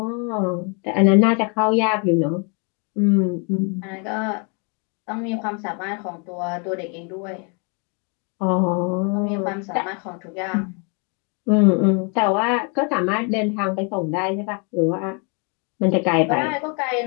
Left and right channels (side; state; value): right; quieter; 36.0 dB